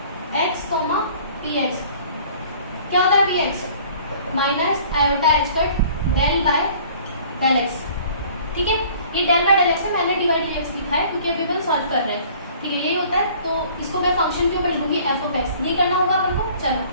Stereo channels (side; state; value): both; inverted; correlation -0.52